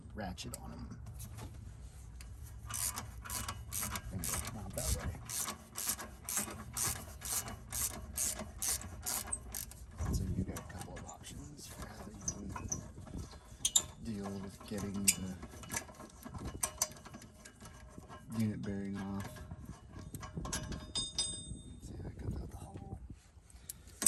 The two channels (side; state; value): both; identical; correlation 1.00